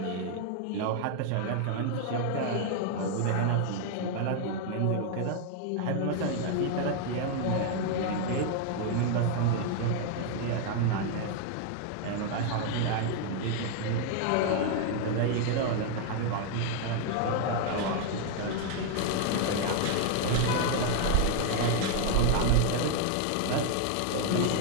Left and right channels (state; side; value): different; both; correlation 0.00